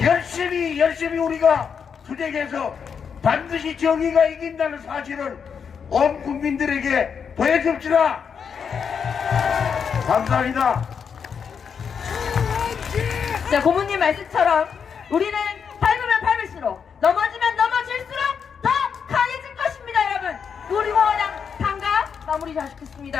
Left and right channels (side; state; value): right; quieter; 6.7 dB